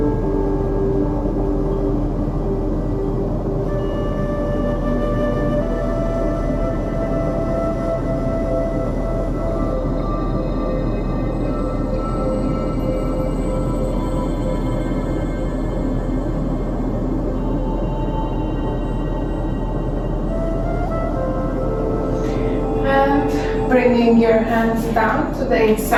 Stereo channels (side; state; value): both; identical; correlation 1.00